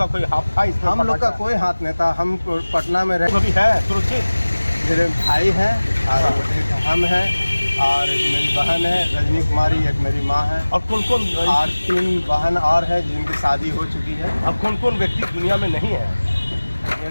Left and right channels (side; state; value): both; inverted; correlation -1.00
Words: कोई हाथ था इसमें? हम लोग का कोई हाथ नहीं था। हम पटना में रहे। अभी है सुरक्षित? मेरे भाई हैं और एक हम हैं और एक मेरी बहन है रजनी कुमारी, एक मेरी माँ है। और कौन कौन? और 3 बहन और है जिनकी शादी हो चुकी है। अब कौन कौन व्यक्ति दुनिया में नहीं है?